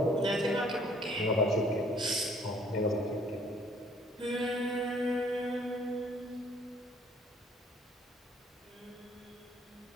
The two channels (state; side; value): normal; both; correlation 0.61